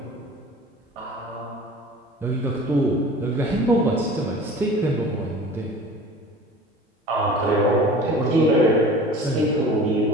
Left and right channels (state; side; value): normal; both; correlation 0.42